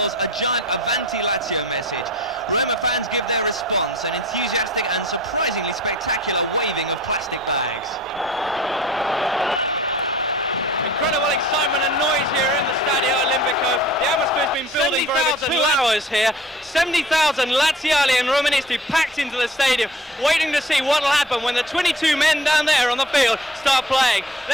a giant Avanti Lazio message. Roma fans give their response, an enthusiastic and surprisingly spectacular waving of plastic bags. Incredible excitement and noise here in the Stadio Olimpico. The atmosphere's been building for over 2 hours here. 70,000 Laziali and Romanisti packed into the stadium, waiting to see what will happen when the 22 men down there on the field start playing.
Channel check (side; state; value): both; normal; correlation 0.47